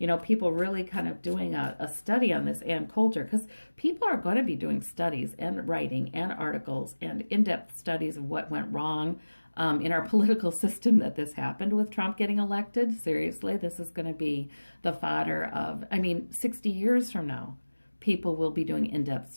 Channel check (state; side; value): inverted; both; correlation -1.00